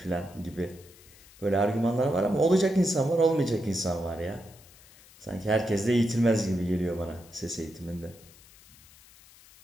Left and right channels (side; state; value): left; noise; hiss, 24 dB below the sound